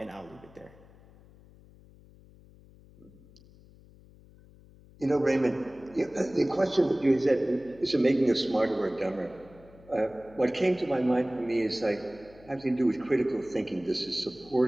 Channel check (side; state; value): left; noise; hum, 24 dB below the sound